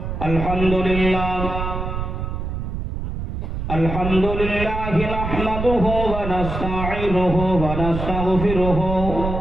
আলহামদুলিল্লাহ الحمد لله نحمده ونستعينه ونستغفره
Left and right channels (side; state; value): right; noise; rumble, 4 dB below the sound